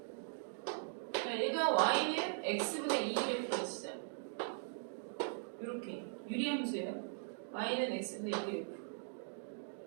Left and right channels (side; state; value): left; silent; digital silence